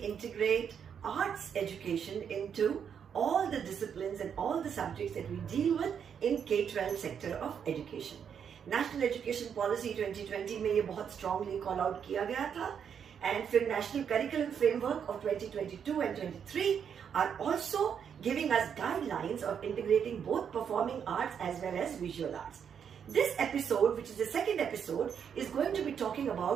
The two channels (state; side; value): quieter; left; 7.7 dB